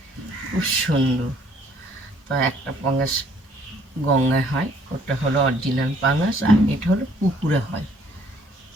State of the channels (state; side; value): normal; both; correlation 0.61